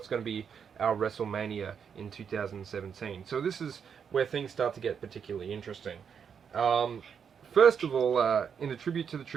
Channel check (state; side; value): quieter; left; 7.1 dB